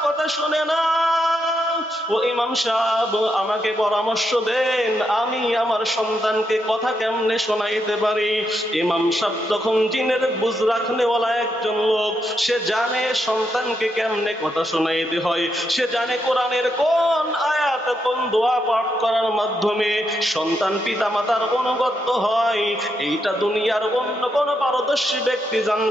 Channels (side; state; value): both; normal; correlation 0.81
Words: কথা শুনে না। ও ইমাম সাহেব আমাকে পরামর্শ দেন, আমি আমার সন্তানকে কথা কেমনে শোনাইতে পারি? ইমাম সাহেব তখন জিনের বুঝ রাখনেওয়ালা একজন লোক, সে জানে সন্তানকে কেমনে কথা শোনাইতে হয়, সে জানে কোরআনের কোন আয়াত কোন দোয়া পাঠ করার মাধ্যমে সন্তান পিতা মাতার অনুগত হয়। এইটা দুনিয়ার অন্য কোন পারদর্শী ব্যক্তি